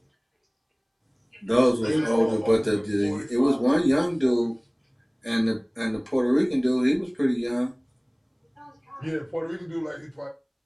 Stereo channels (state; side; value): identical; both; correlation 1.00